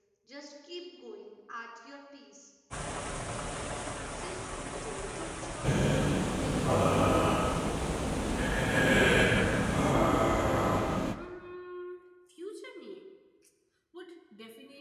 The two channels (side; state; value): both; identical; correlation 1.00